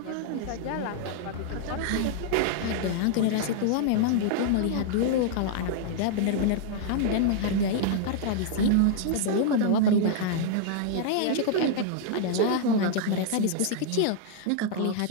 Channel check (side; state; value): both; different; correlation -0.01